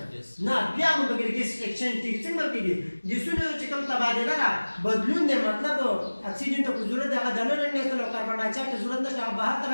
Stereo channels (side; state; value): both; inverted; correlation -1.00